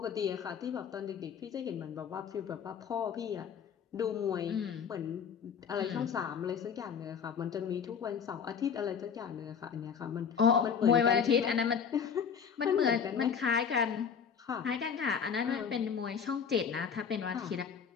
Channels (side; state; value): right; quieter; 7.0 dB